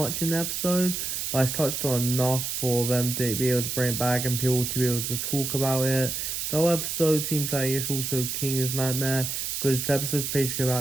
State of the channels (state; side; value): noise; right; hiss, 3 dB below the sound